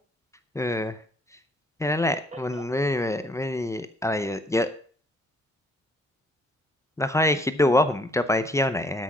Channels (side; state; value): both; normal; correlation 0.63